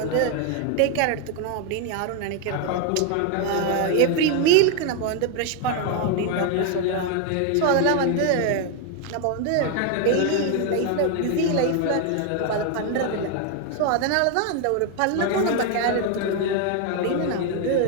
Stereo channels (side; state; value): both; different; correlation 0.01